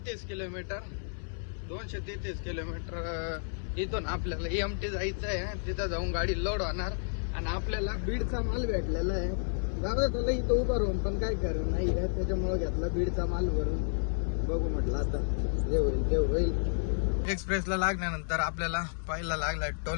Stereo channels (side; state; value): right; silent; 57 dB below the other